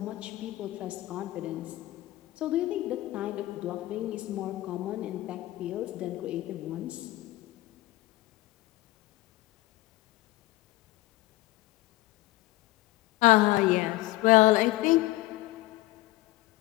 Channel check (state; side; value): quieter; right; 18.3 dB